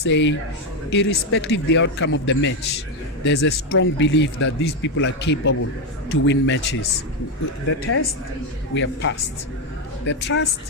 irrespective of the outcome of the match, there's a strong belief that these people are capable to win matches. The test, we have passed. The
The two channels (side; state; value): both; normal; correlation 0.07